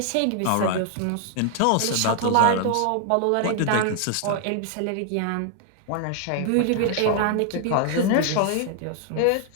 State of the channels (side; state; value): both; different; correlation 0.00